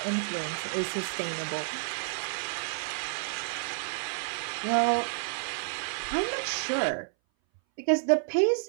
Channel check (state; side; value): silent; left; 58 dB below the other